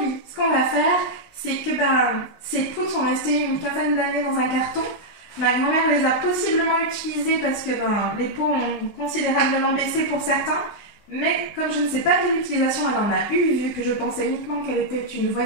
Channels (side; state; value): right; late; 20 ms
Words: ce qu'on va faire, c'est que ces poudres sont restées une quinzaine d'années dans un carton. Ma grand-mère les a possiblement utilisées parce que les pots ont considérablement baissé pour certains. Mais comme je ne sais pas quelle utilisation elle en a eu, vu que je pensais uniquement qu'elle était une